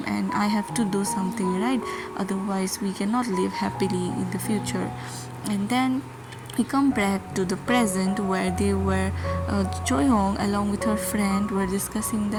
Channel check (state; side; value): identical; both; correlation 1.00